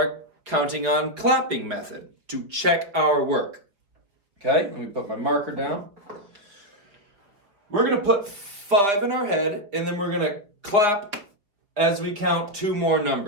counting on clapping method to check our work. Okay, let me put my marker down. We're going to put 5 in our head, and then we're going to clap as we count 2 more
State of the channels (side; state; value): left; late; 4.8 ms